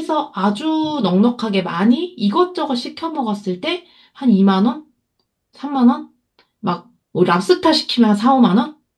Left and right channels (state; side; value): identical; both; correlation 1.00